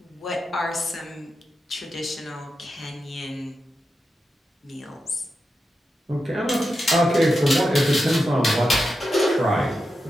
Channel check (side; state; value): both; normal; correlation 0.89